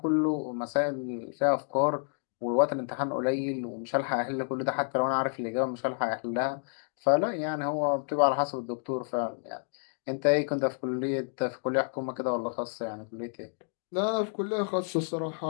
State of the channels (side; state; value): right; silent; digital silence